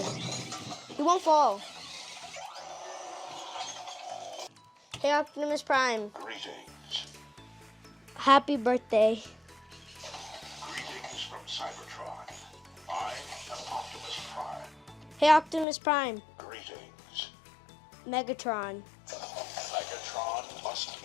He won't fall. Hey, Optimus Prime. Greetings. Happy birthday. Greetings from Cybertron. I am Optimus Prime. Hey, Optimus Prime. Greetings. Megatron. Megatron must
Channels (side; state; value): right; drops out; at 15.7 s